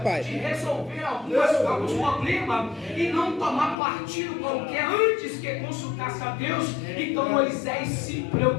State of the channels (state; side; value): drops out; right; at 3.8 s